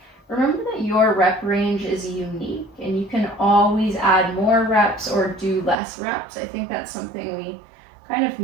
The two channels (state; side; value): drops out; left; at 5.8 s